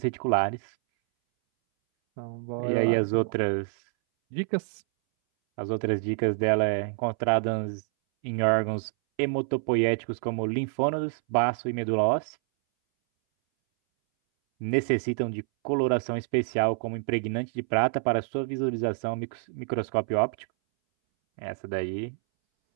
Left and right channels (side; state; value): left; silent; 60 dB below the other